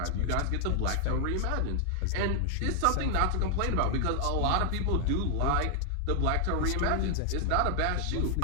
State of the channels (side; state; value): both; different; correlation 0.00